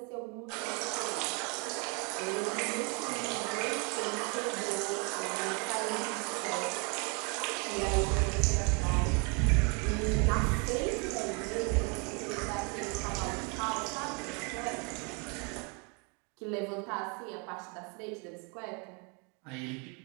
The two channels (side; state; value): left; quieter; 33.6 dB